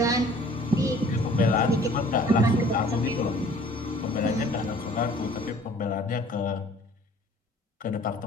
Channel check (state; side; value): normal; both; correlation 0.52